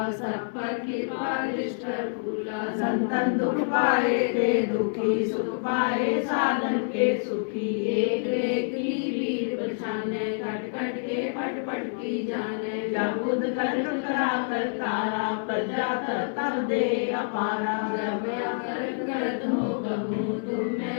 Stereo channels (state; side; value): silent; right; digital silence